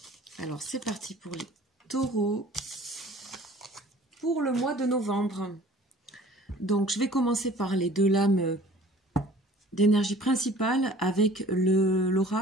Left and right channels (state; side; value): normal; both; correlation 0.49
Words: Alors, c'est parti pour les taureaux pour le mois de novembre. Donc, je vais commencer par les deux lames d'énergie principale avec